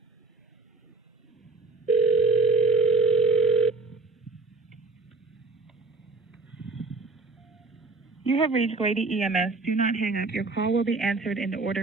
You have reached Grady EMS. Do not hang up. Your call will be answered in the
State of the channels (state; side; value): quieter; left; 3.6 dB